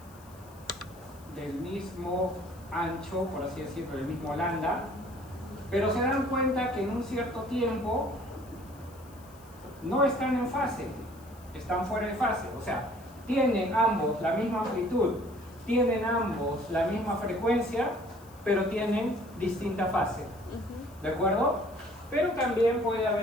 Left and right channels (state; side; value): noise; left; hiss, 25 dB below the sound